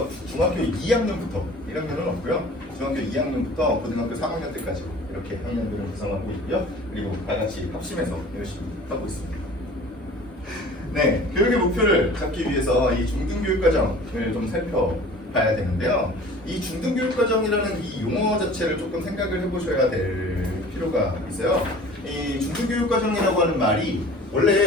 중학교 2학년부터 1학년은 없고요. 중학교 2학년부터 고등학교 3학년 때까지 이렇게 학년들을 구성하고 있고요. 그리고 다 같이 합심해서 열심히 하고 있습니다. 네, 교육의 목표를 잡기 위해서 이 중등교육과정을 좀 살펴봐야 되는데요. 이 중등교육과정이라는 이 용어 자체를 조금 생각을 해보셔야 될 필요가 있어요. 이 중등교육과정이라고 하는 말이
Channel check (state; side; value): normal; both; correlation 0.45